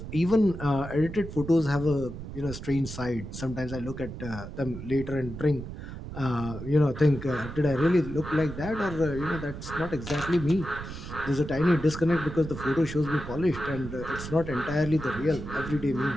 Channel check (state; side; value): noise; right; rumble, 10 dB below the sound